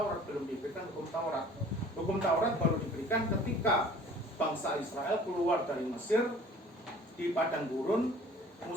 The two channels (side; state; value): both; normal; correlation 0.49